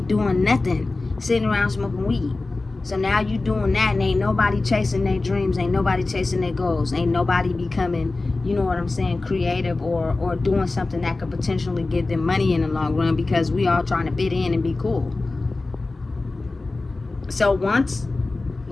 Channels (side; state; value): right; quieter; 3.3 dB